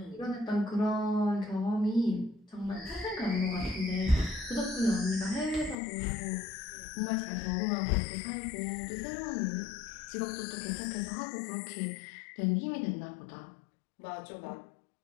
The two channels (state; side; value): drops out; right; at 5.8 s